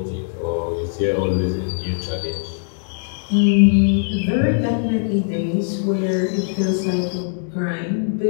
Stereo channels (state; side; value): silent; right; digital silence